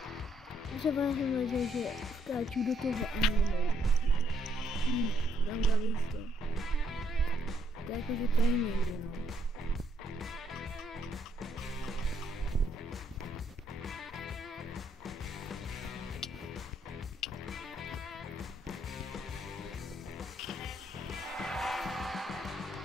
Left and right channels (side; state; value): both; normal; correlation 0.72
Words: Třeba jsem věděl, že skáču do toho a nejde. Tam dali to. To je jako, že to nejde, no.